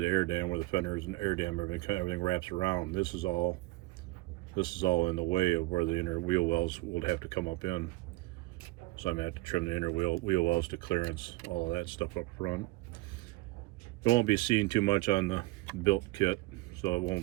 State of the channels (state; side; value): quieter; left; 20.7 dB